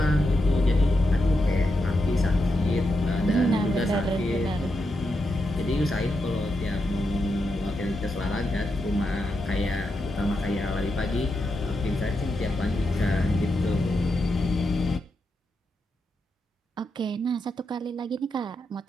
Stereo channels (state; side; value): normal; both; correlation 0.85